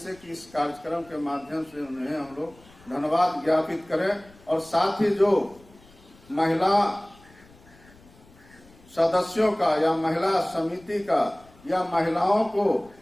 कि इस कार्यक्रम के माध्यम से उन्हें हम लोग धन्यवाद ज्ञापित करें। और साथ ही जो महिला सदस्यों का या महिला समिति का या महिलाओं को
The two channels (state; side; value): noise; left; rumble, 26 dB below the sound